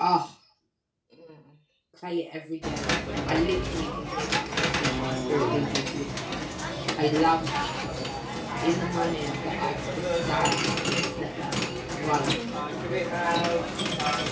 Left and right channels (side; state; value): both; identical; correlation 1.00